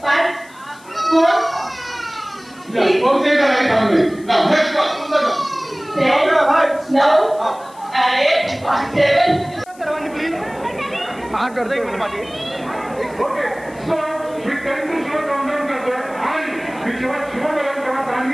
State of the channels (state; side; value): noise; left; hiss, 25 dB below the sound